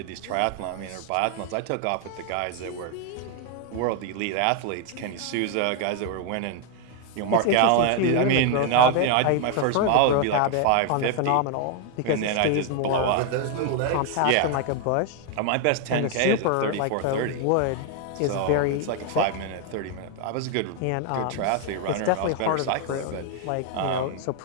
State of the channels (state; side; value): different; both; correlation 0.00